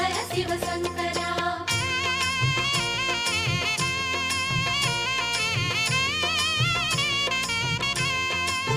ஹர சிவ சங்கரா.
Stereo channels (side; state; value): both; identical; correlation 1.00